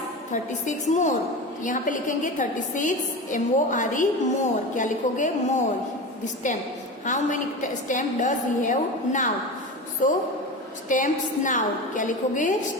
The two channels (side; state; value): both; normal; correlation 0.26